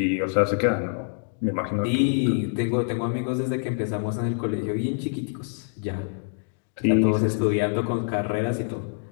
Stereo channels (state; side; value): silent; right; digital silence